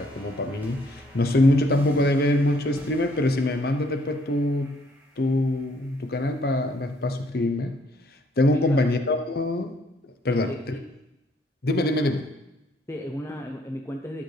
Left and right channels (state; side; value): normal; both; correlation 0.66